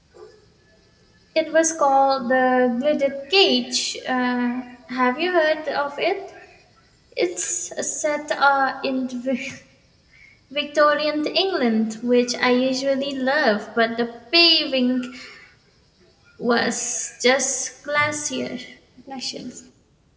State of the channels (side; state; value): both; identical; correlation 1.00